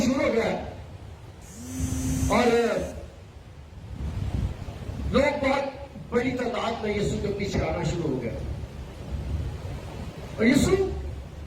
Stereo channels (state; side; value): identical; both; correlation 1.00